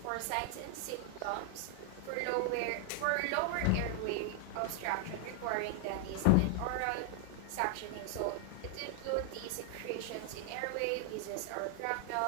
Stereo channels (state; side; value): different; both; correlation 0.00